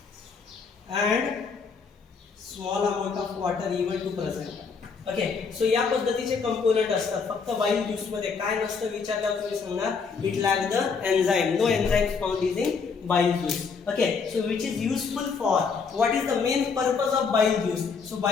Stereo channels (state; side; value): quieter; right; 5.4 dB